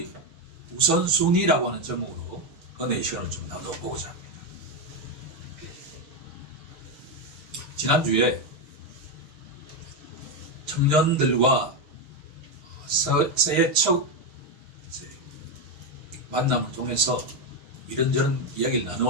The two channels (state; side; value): late; left; 6.9 ms